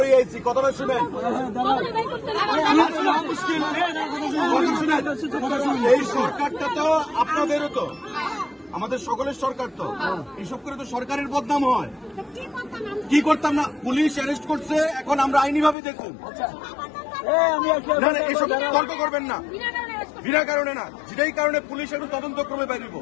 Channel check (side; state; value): right; drops out; at 15.8 s